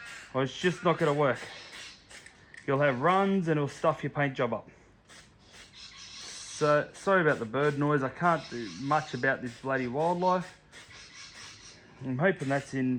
or it's just not going to work. You'll have runs and it'll stuff your paint job up. So sorry about the bird noise. I can't do much about this bloody wildlife. I'm hoping that's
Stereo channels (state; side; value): identical; both; correlation 1.00